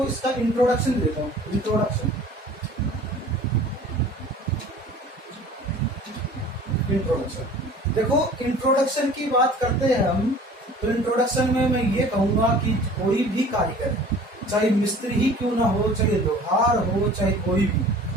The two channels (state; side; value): normal; both; correlation 0.46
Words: इसका इंट्रोडक्शन देता हूँ। इंट्रोडक्शन देखो, इंट्रोडक्शन की बात करते हैं हम, तो इंट्रोडक्शन में मैं ये कहूंगा कि कोई भी कारीगर, चाहे मिस्त्री ही क्यों ना हो, चाहे लोहार हो, चाहे कोई भी,